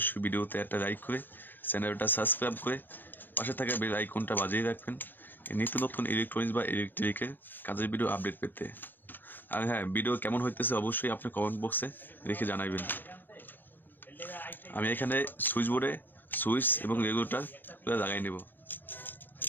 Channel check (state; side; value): late; right; 0.092 ms